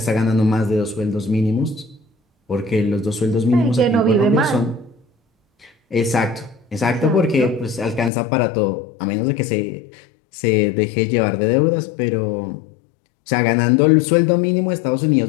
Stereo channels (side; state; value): right; drops out; at 8.1 s